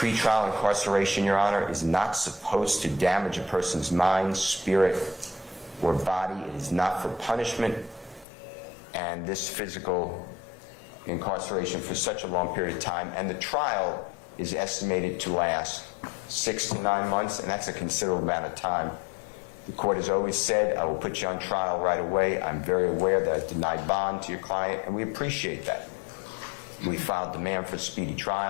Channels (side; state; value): right; drops out; at 8.2 s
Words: incarceration, Your Honor, is not supposed to damage a person's mind, spirit, or body. It is not for punishment. And this physical incarceration for such a long period of time, and the trial is estimated to last 6 to 9 months, and that's a considerable amount of time. The court has always said, I will put you on trial right away. I'm very aware that I denied bond to your client, and we appreciate that. We filed demand for speedy